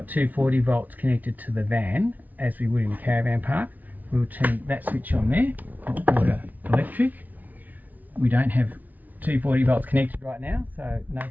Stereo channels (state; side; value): late; left; 0.078 ms